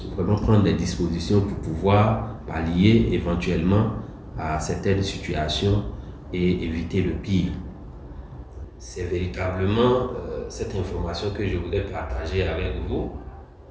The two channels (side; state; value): both; identical; correlation 1.00